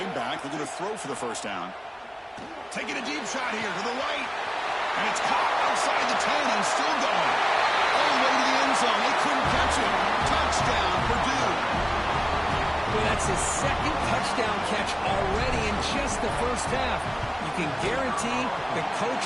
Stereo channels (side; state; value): both; identical; correlation 1.00